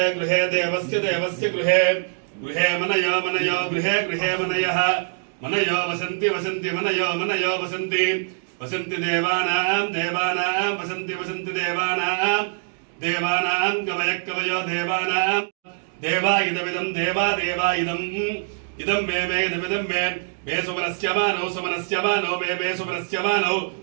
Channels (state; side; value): silent; left; digital silence